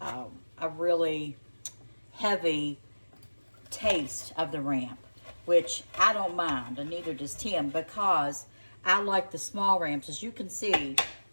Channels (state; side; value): inverted; both; correlation -1.00